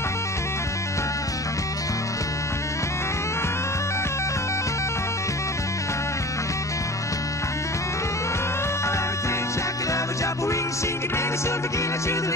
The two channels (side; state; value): both; normal; correlation 0.39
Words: Sing it, baby, so begin to the